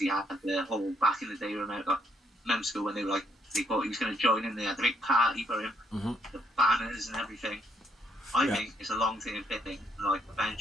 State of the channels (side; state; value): both; normal; correlation 0.72